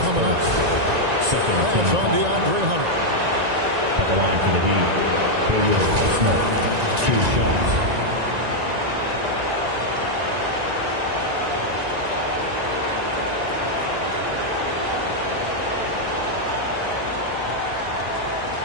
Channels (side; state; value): left; late; 1.9 ms